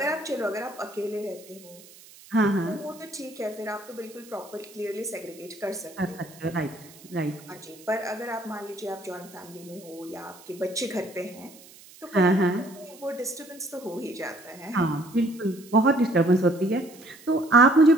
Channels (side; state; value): right; noise; hiss, 22 dB below the sound